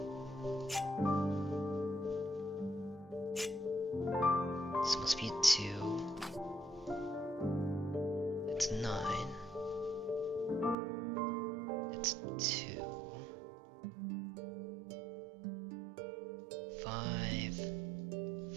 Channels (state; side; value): drops out; left; at 10.8 s